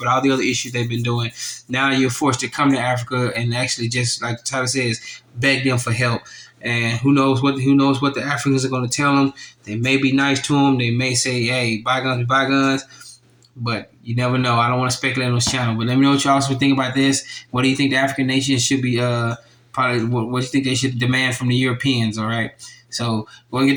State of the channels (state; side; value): identical; both; correlation 1.00